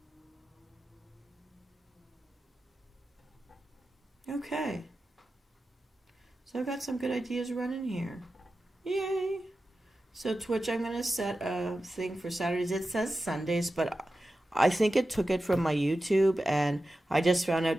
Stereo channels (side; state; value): both; normal; correlation 0.93